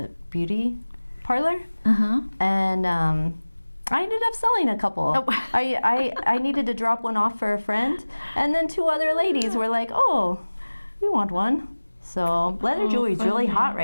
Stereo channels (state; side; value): inverted; both; correlation -1.00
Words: beauty parlor, and I ended up selling a couple. I needed to drop one off for a friend, and then two other ladies were like, "Oh, we want one." So leather jewelry is really hot